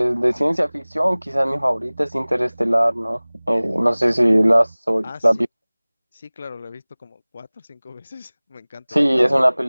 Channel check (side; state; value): both; inverted; correlation -1.00